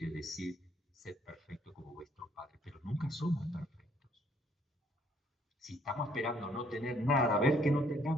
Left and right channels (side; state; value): both; normal; correlation 0.65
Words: decir ser perfecto como vuestro Padre, pero nunca somos perfectos. Si estamos esperando no tener nada, ver que no